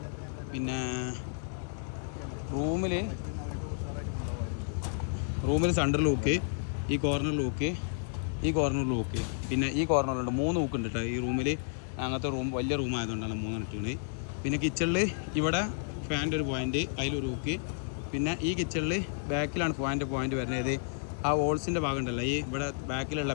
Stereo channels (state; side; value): silent; right; 57 dB below the other